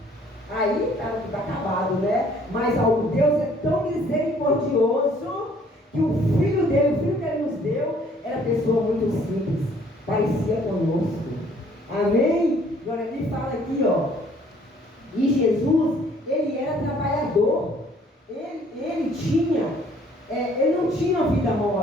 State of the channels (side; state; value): both; normal; correlation 0.60